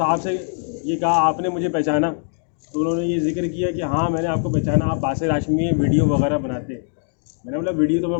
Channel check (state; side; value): silent; right; 65 dB below the other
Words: से ये कहा, आपने मुझे पहचाना? तो उन्होंने ये जिक्र किया कि हाँ मैंने आपको पहचाना, आप बासिर हाशमी वीडियो वगैरह बनाते। मैंने बोला वीडियो तो